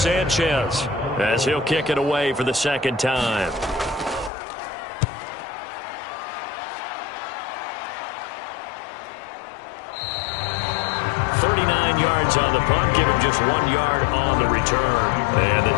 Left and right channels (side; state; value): right; drops out; at 4.3 s